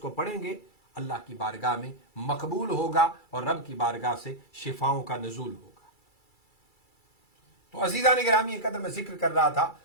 پڑھیں گے، اللہ کی بارگاہ میں مقبول ہوگا اور رب کی بارگاہ سے شفاؤں کا نزول ہوگا۔ تو عزیزان گرامی، ایک قدر میں ذکر کر رہا تھا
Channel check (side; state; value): right; late; 2.3 ms